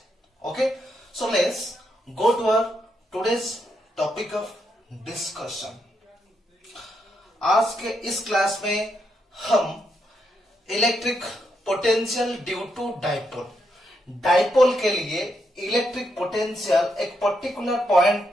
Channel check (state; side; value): normal; both; correlation 0.80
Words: Okay, so let's go to our today's topic of discussion. आज के इस class में हम electric potential due to dipole के लिए electric potential एक particular point